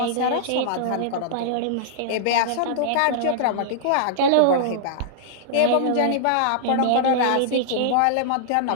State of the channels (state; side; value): different; both; correlation -0.01